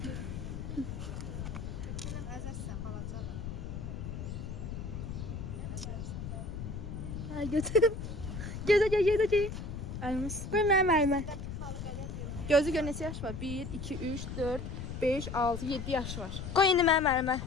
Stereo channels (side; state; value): left; noise; rumble, 7 dB below the sound